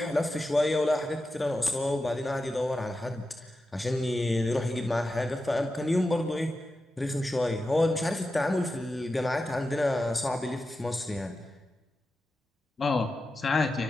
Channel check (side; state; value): both; normal; correlation 0.91